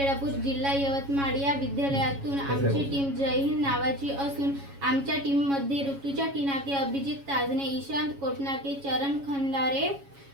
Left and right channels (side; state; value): left; late; 7.2 ms